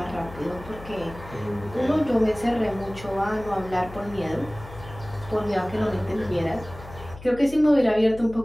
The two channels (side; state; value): left; noise; hum, 16 dB below the sound